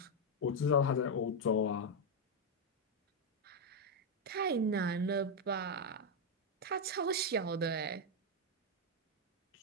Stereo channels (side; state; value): both; normal; correlation 0.01